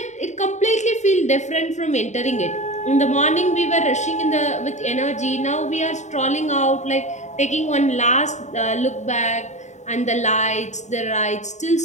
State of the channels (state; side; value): late; right; 0.34 ms